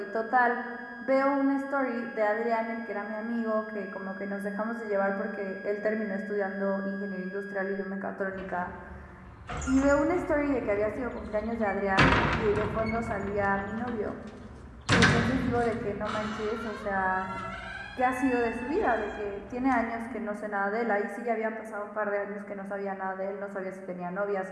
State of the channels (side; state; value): both; identical; correlation 1.00